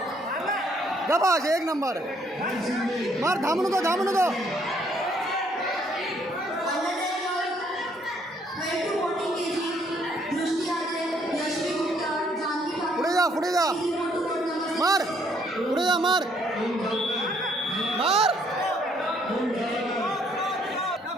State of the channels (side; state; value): both; normal; correlation 0.66